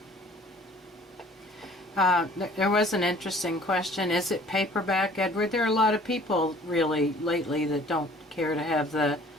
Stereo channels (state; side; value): normal; both; correlation 0.52